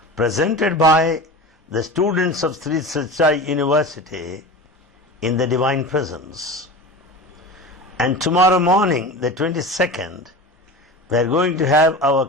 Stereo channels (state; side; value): normal; both; correlation 0.31